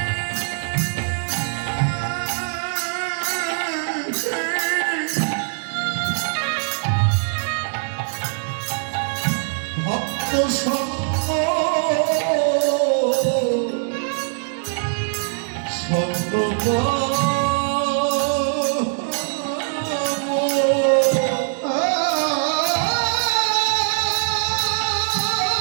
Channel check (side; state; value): left; silent; 64 dB below the other